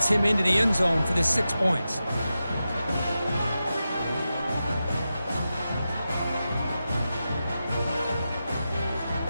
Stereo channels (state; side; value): inverted; both; correlation -0.91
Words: him into the end zone for the 6 points.